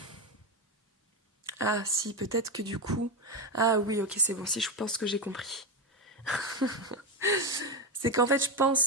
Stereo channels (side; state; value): both; normal; correlation 0.12